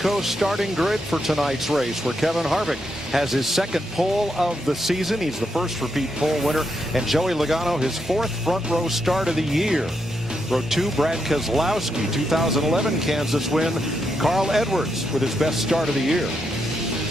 starting grid for tonight's race, where Kevin Harvick has his second pole of the season. He's the first repeat pole winner, and Joey Logano his fourth front row start of the year. Row 2, Brad Keselowski, 2011 Kansas win. Carl Edwards with his best start of the year.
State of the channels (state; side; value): normal; both; correlation 0.81